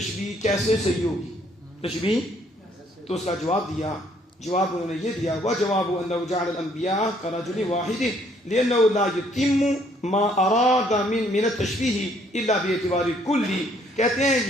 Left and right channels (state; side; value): normal; both; correlation 0.65